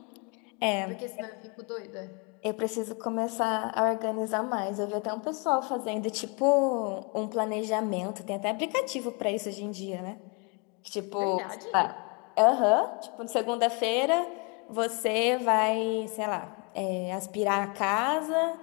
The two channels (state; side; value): quieter; right; 33.2 dB